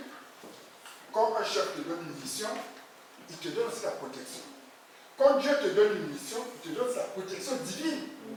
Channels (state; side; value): identical; both; correlation 1.00